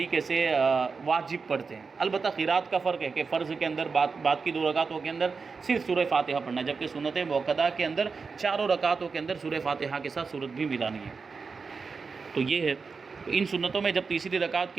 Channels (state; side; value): quieter; left; 4.9 dB